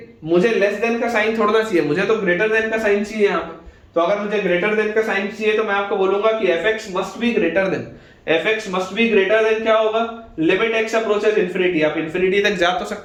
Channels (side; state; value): both; identical; correlation 1.00